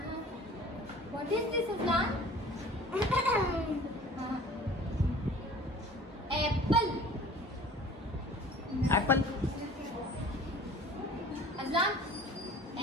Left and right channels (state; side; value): normal; both; correlation 0.46